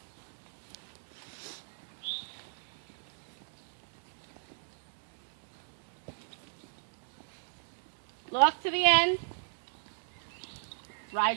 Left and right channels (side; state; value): left; silent; digital silence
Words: Look to the end.